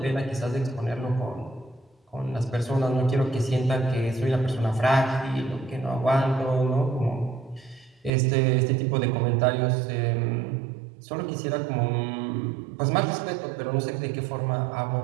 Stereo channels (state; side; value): drops out; left; at 8.1 s